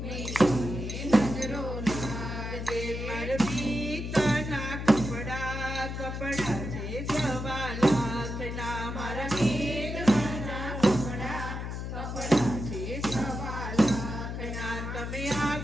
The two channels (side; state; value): left; noise; hum, 5 dB below the sound